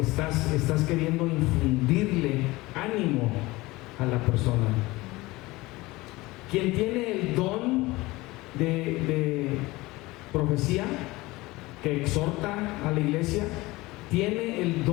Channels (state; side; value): quieter; right; 20.7 dB